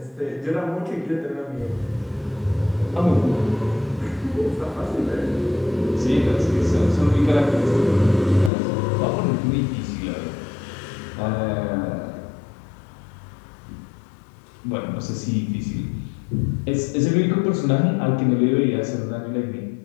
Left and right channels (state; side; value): drops out; right; at 8.5 s